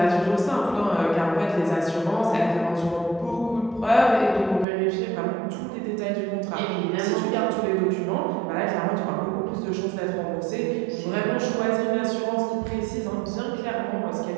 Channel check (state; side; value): drops out; left; at 4.7 s